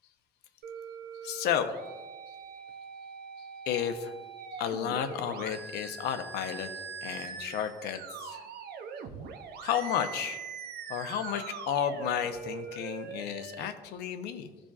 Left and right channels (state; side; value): quieter; right; 6.0 dB